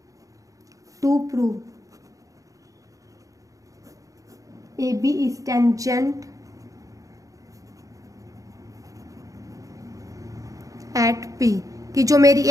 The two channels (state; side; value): late; left; 0.16 ms